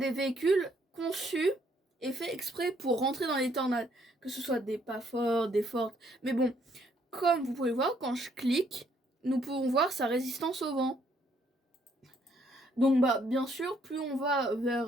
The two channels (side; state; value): both; normal; correlation 0.68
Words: véhicules conçus et faits exprès pour rentrer dans les tornades. Que ce soit des pas forts, des fortes. Mais bon, comme vous pouvez voir, quand je clique, nous pouvons voir sa résistance au vent. Donc bien sûr, plus on va